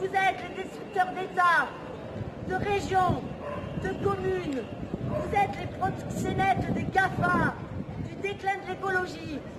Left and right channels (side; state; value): both; identical; correlation 1.00